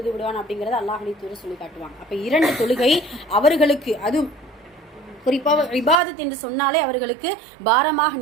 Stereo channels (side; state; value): left; drops out; at 6.0 s